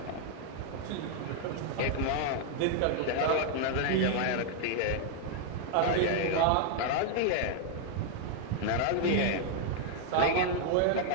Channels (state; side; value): different; both; correlation -0.01